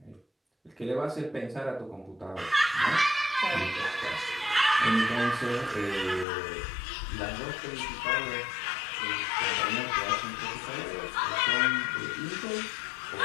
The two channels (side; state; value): right; drops out; at 6.2 s